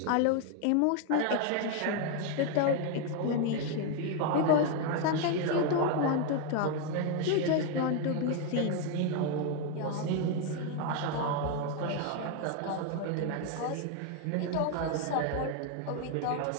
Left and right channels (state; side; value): different; both; correlation 0.01